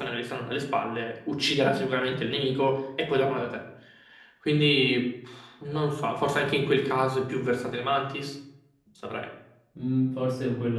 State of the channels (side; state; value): both; identical; correlation 1.00